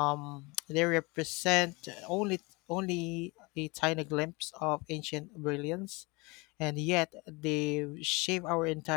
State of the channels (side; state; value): right; quieter; 26.4 dB